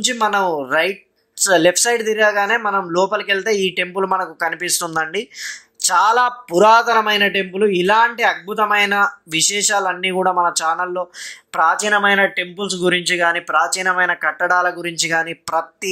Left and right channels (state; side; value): identical; both; correlation 1.00